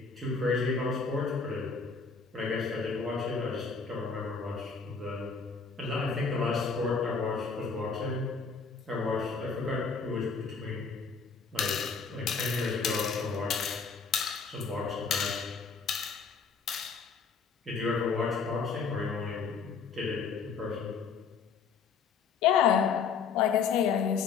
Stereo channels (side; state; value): right; quieter; 5.4 dB